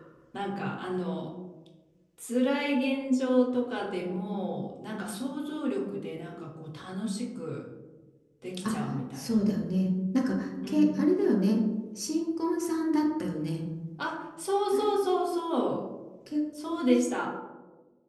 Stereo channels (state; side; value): identical; both; correlation 1.00